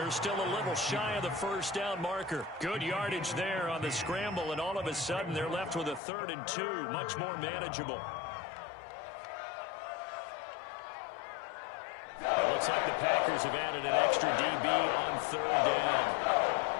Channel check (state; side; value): drops out; right; at 6.0 s